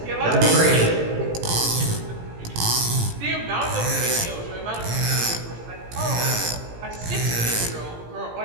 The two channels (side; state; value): left; late; 17 ms